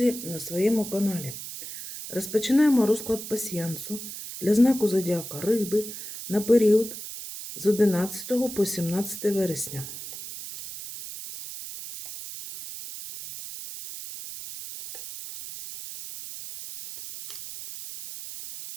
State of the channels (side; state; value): right; noise; hiss, 10 dB below the sound